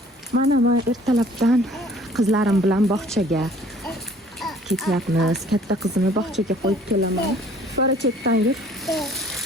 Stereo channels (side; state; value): both; normal; correlation 0.54